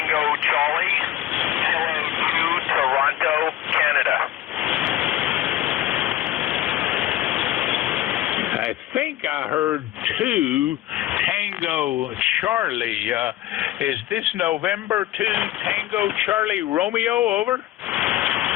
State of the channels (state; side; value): quieter; right; 14.1 dB